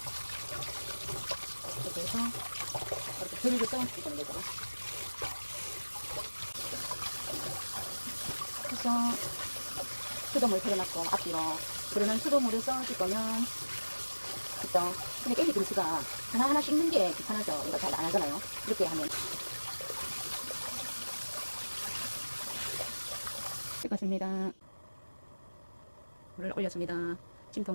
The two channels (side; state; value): both; inverted; correlation -1.00